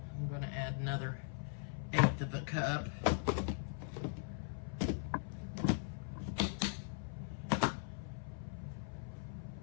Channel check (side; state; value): right; silent; 51 dB below the other